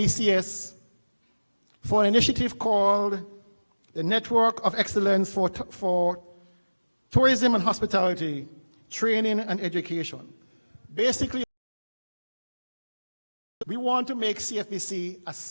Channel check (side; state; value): both; inverted; correlation -1.00